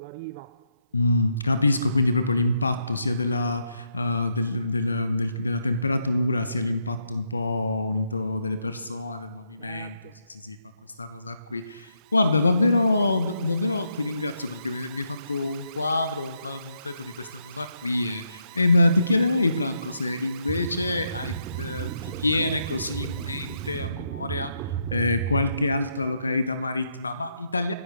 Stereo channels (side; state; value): both; inverted; correlation -0.78